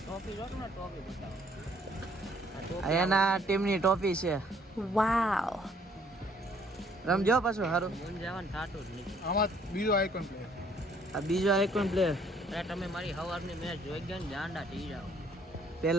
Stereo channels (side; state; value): both; normal; correlation 0.63